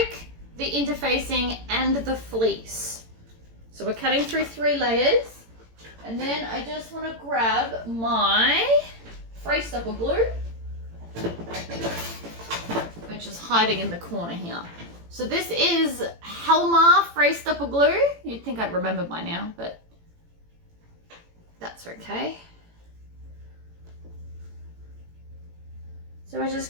the interfacing, and the fleece. So we're cutting through 3 layers, and then I just want to grab my fray stopper glue, which is hiding in the corner here. So this is Helmar fray stopper glue. You'd think I'd remember by now, but that's okay. So we're just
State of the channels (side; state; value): left; late; 18 ms